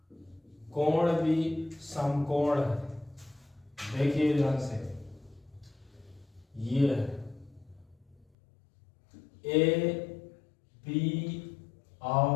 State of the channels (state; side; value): drops out; right; at 8.2 s